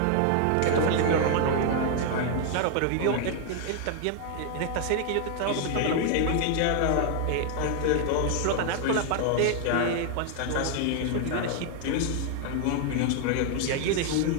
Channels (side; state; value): both; different; correlation 0.00